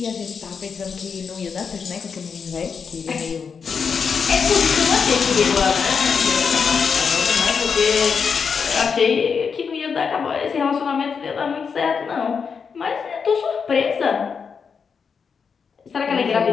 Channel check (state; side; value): quieter; right; 6.0 dB